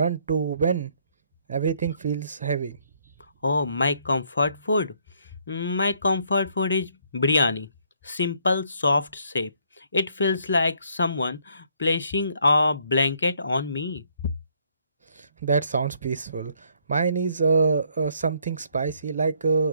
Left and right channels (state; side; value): inverted; both; correlation -0.68